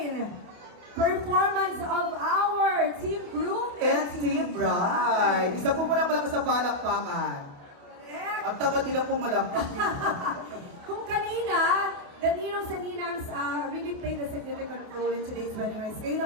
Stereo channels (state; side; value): late; left; 28 ms